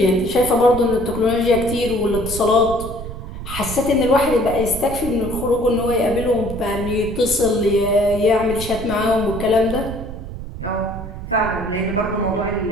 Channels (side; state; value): right; noise; rumble, 9 dB below the sound